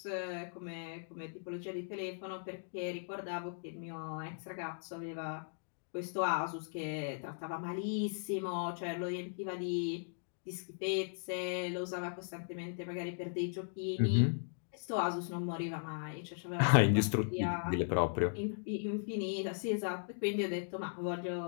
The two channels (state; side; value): silent; right; digital silence